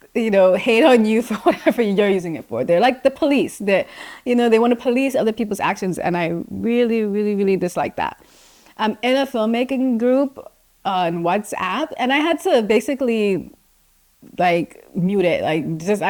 hate on you for whatever you're using it for. They're like the police. They want to police other people's actions, and I really, really, really dislike that. I'm in a filmmaking group on WhatsApp, and I had to basically like mute it. Like, just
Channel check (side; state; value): both; identical; correlation 1.00